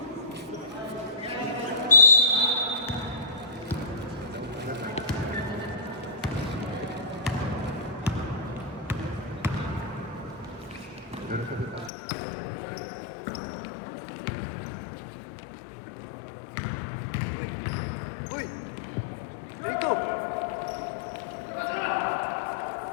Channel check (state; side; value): drops out; right; at 11.9 s